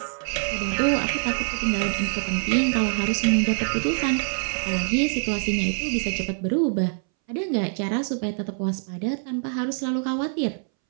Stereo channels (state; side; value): silent; left; 62 dB below the other